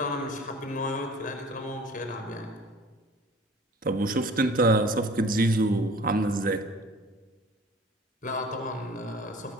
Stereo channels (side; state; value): both; normal; correlation 0.47